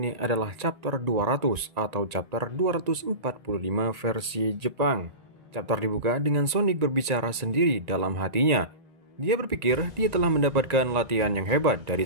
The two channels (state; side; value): late; left; 1.9 ms